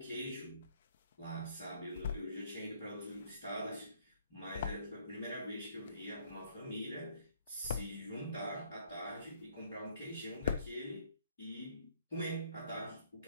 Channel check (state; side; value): inverted; both; correlation -0.64